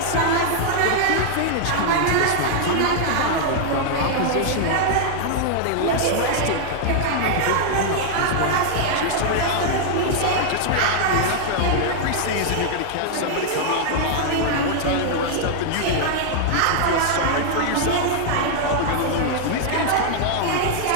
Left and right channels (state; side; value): different; both; correlation -0.01